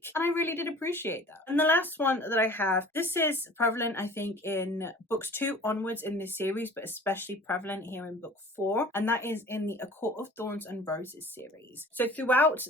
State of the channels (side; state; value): both; normal; correlation 0.46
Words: And I really did appreciate that. And the last one that I have, this is prevalent I think in books 2 onwards in this series, but especially prevalent here in book 4, and that is in the A Court of Thorns and Roses series. So throughout